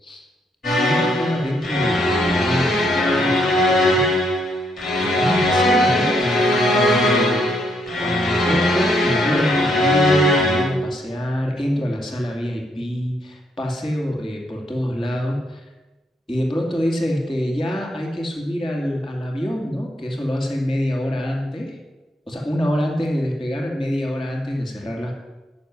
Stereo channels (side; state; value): both; normal; correlation 0.75